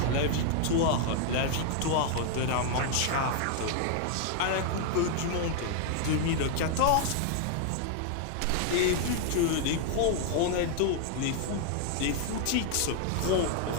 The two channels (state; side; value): different; both; correlation 0.00